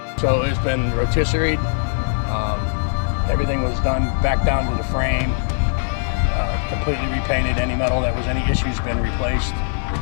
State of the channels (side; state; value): right; silent; digital silence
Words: So it's been rotisseried. Everything was done back down to the frame, completely repainted. Any metal that was any issues been replaced.